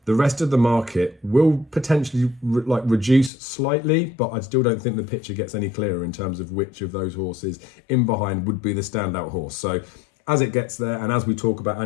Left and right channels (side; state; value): right; drops out; at 3.3 s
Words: the rest of the market will potentially reduce slightly, but I still don't think the picture gets any clearer in terms of which of those horses in behind would be the standout horse. So as it gets there, and as we talk about